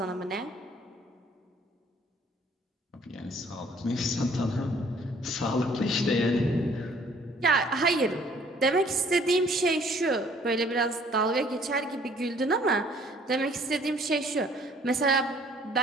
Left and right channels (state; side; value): normal; both; correlation 0.58